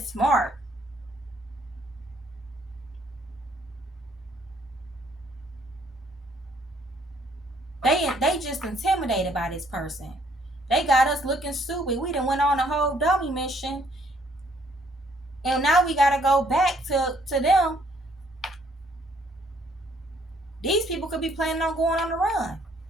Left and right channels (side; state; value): both; normal; correlation 0.65